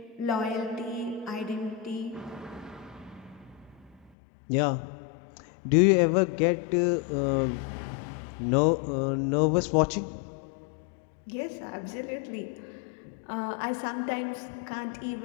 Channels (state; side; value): drops out; right; at 4.1 s